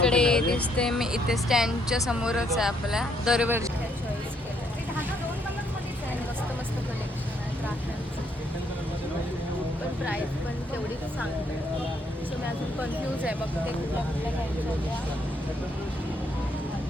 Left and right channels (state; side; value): normal; both; correlation 0.71